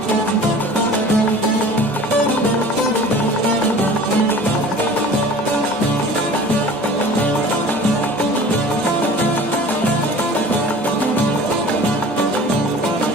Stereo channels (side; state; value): both; normal; correlation 0.43